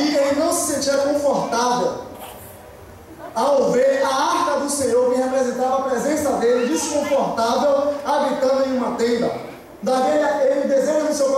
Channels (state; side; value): identical; both; correlation 1.00